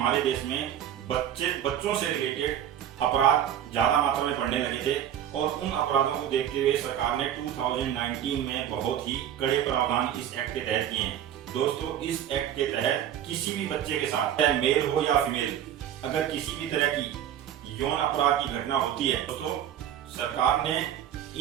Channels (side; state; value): left; quieter; 10.4 dB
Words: देश में बच्चों से रिलेटेड अपराध ज्यादा मात्रा में बढ़ने लगे थे और उन अपराधों को देखते हुए सरकार ने 2019 में बहुत ही कड़े प्रावधान इस एक्ट के तहत किए हैं। दोस्तों, इस एक्ट के तहत किसी भी बच्चे के साथ, चाहे मेल हो या फीमेल, अगर किसी भी तरह की यौन अपराध की घटना होती है तो सरकार ने